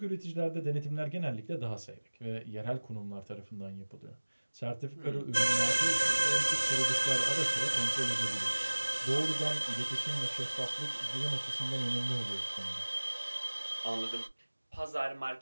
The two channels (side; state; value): both; inverted; correlation -1.00